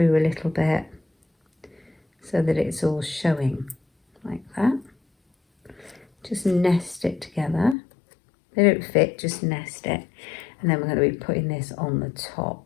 a little bit so that it's all showing like that. Just nest it together. They don't fit, just nest it, and then we're going to be putting this on the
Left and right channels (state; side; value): drops out; right; at 7.8 s